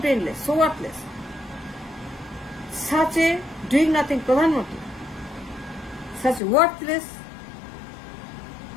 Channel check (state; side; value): drops out; right; at 6.4 s